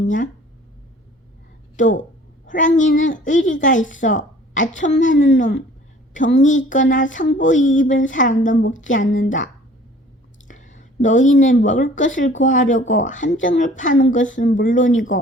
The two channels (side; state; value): both; normal; correlation 0.51